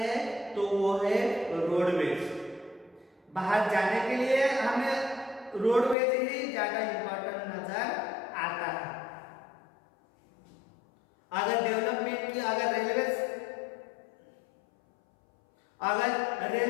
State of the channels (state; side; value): drops out; right; at 6.0 s